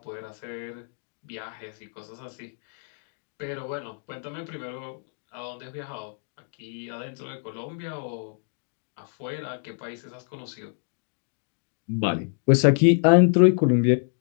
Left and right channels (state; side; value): silent; right; 58 dB below the other